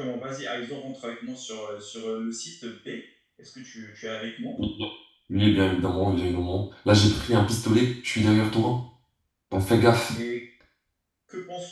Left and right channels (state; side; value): identical; both; correlation 1.00